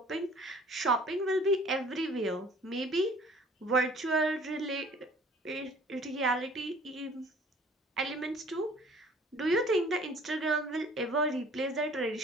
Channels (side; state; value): both; normal; correlation 0.52